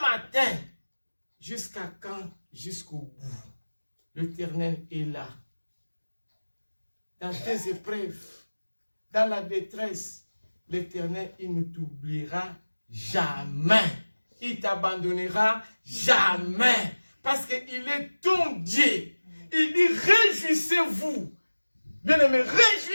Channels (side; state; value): both; inverted; correlation -1.00